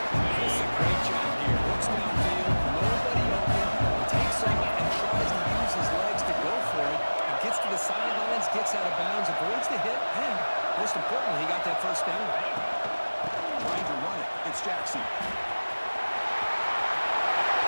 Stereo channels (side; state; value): both; inverted; correlation -1.00